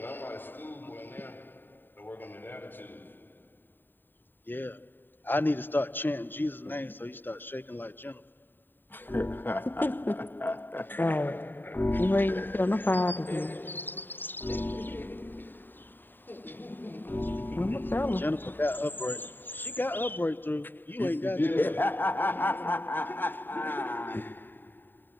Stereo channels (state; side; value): late; right; 0.093 ms